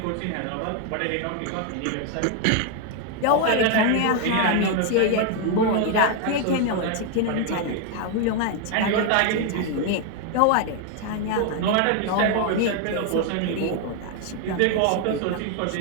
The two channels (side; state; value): both; different; correlation 0.01